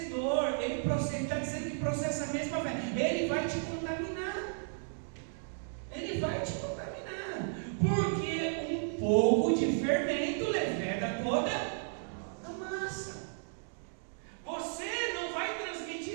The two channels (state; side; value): silent; left; digital silence